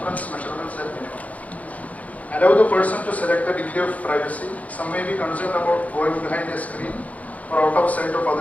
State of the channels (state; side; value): late; right; 0.070 ms